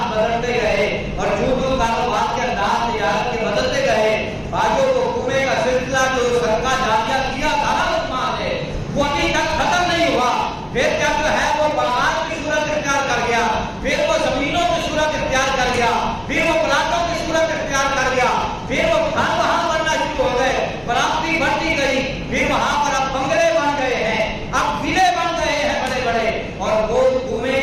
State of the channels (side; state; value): both; identical; correlation 1.00